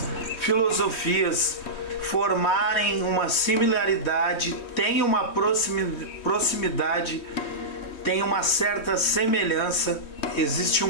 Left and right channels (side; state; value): right; late; 3.2 ms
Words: filosofias formarem uma similaridade, tem uma proximidade, tem uma certa semelhança, existe